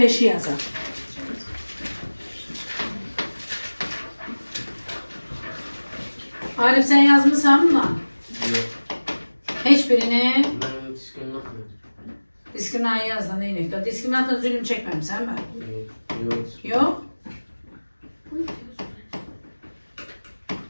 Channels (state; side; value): inverted; both; correlation -1.00